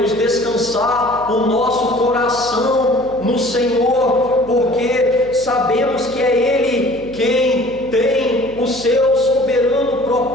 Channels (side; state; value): right; noise; hum, 18 dB below the sound